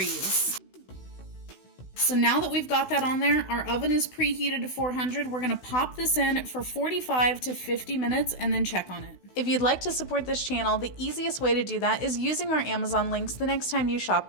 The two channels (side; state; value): right; late; 16 ms